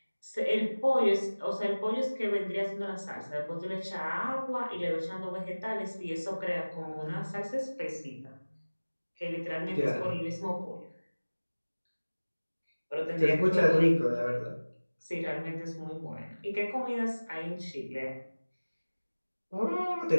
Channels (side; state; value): both; inverted; correlation -1.00